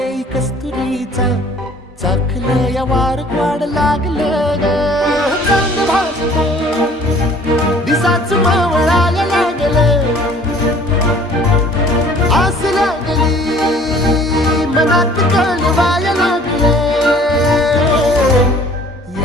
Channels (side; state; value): both; normal; correlation 0.52